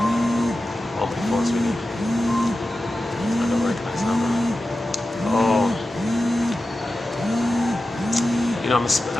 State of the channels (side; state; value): both; normal; correlation 0.93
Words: Oh, my phone's ringing. I don't recognize that number. You know,